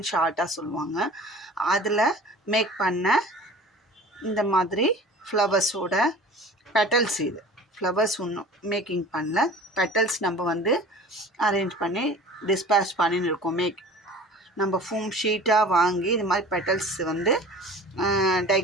ஷார்ட்டாக சொல்லுவாங்க. அதில் மேக் பண்ண இந்த மாதிரி ஃப்ளவர்ஸோட பெட்டல்ஸ். இது ஃப்ளவர்ஸ் ஒன்றும் மேக்கிங் பண்ணல, பெட்டல்ஸ் நம்ம அரேஞ்ச் பண்ணி டிஸ்பேச் பண்ணின்னு இருக்கோம். நம்ம ஃபோம் ஷீட்டாக வாங்கி இது மாதிரி பெட்டல்ஸ் டை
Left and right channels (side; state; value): both; normal; correlation 0.43